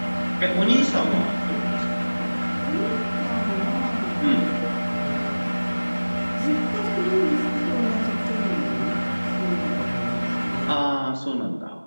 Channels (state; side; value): inverted; both; correlation -1.00